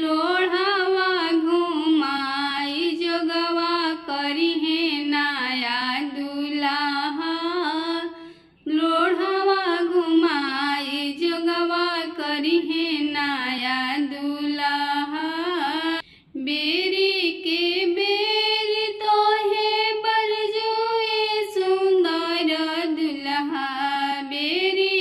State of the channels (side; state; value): both; identical; correlation 1.00